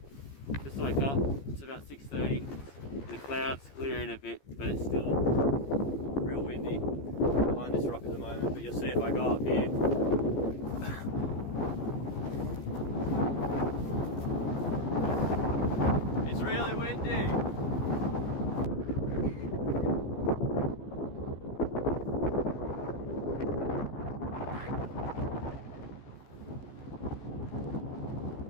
just woke up. It's about 6:30. The clouds clearing a bit, but it's still real windy behind this rock at the moment. But you'll see if I go up here. It's really windy.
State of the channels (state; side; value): late; right; 14 ms